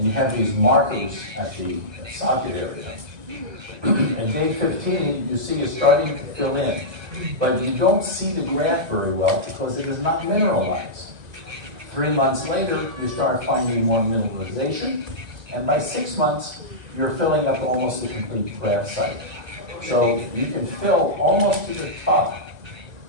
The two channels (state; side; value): late; left; 2.0 ms